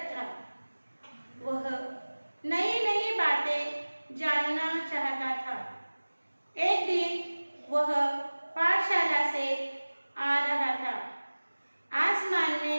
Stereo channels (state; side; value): inverted; both; correlation -1.00